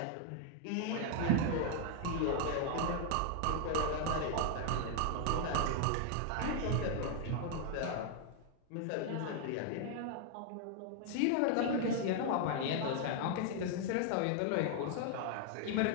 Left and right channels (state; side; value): different; both; correlation 0.00